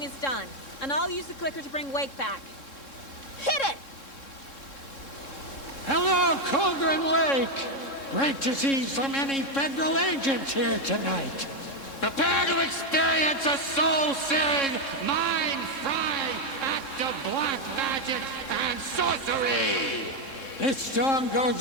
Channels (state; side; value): late; right; 3.7 ms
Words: is done, and I'll use the clicker to bring Wake back. Hit it! Hello, Colgren Lake. Great to see so many federal agents here tonight. Prepare to experience a soul-searing, mind-frying act of black magic and sorcery. This song